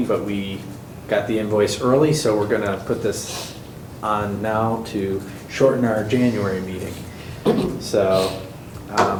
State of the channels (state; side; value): identical; both; correlation 1.00